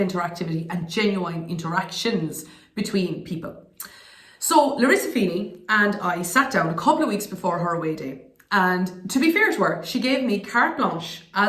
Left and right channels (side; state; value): both; identical; correlation 1.00